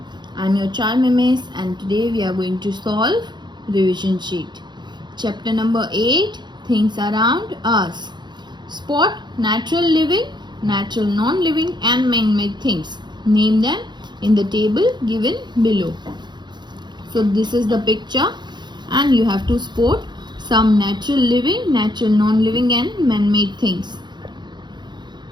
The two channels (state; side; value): late; left; 0.21 ms